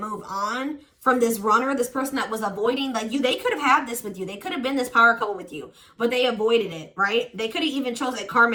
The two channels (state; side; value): identical; both; correlation 1.00